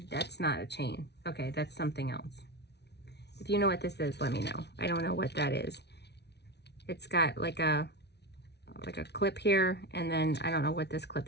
That's not a chain. Okay, that's something else. If you know what this is, let me know. I don't know what that is. It's got like a clip here, and then I don't know what this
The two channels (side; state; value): right; late; 0.49 ms